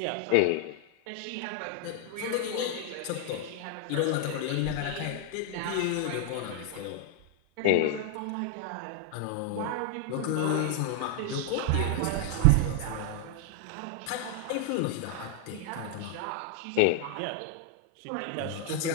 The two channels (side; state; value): both; different; correlation 0.00